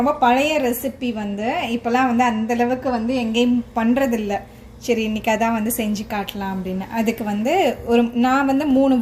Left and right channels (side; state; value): both; identical; correlation 1.00